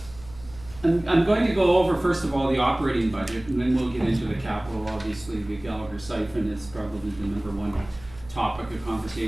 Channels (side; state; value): right; noise; hum, 20 dB below the sound